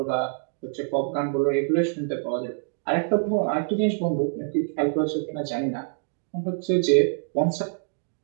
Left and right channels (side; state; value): left; silent; digital silence